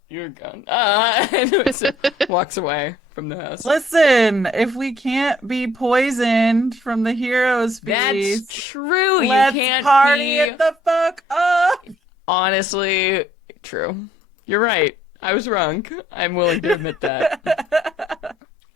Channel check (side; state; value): both; normal; correlation 0.63